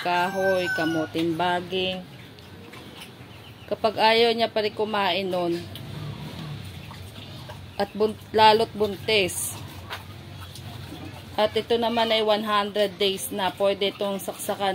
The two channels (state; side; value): identical; both; correlation 1.00